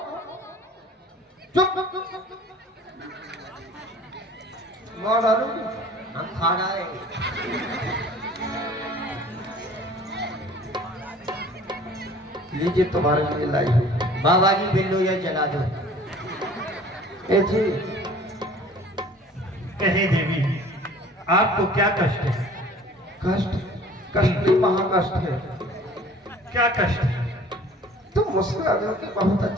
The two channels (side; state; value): both; normal; correlation 0.48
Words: चुप। मार डालूंगी। हम खा रहे लीजिए तुम्हारे लिए लाई हुई। बाबा जी बिल्लो या जला दो। ए जी, कहे देवी, आपको क्या कष्ट है? कष्ट? कष्ट नहीं, महाकष्ट है। क्या कष्ट है? तुम मुस्कुरा दो कि बहुत